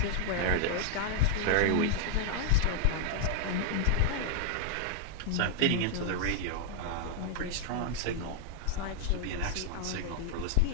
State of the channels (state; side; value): different; both; correlation 0.00